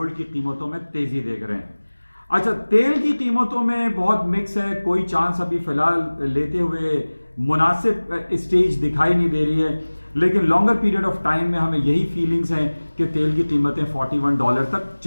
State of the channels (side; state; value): both; inverted; correlation -1.00